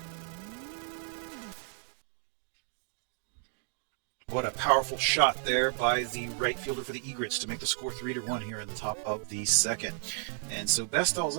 What a powerful shot there by the right fielder for the Egrets to make the score 3-1 here in the top of the second. And so Bestall's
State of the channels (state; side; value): silent; left; 56 dB below the other